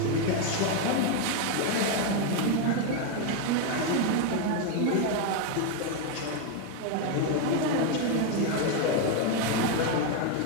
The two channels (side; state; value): both; different; correlation 0.01